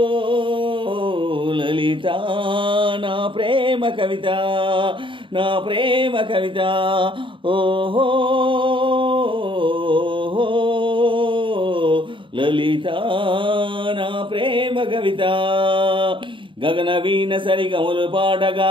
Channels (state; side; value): late; left; 0.24 ms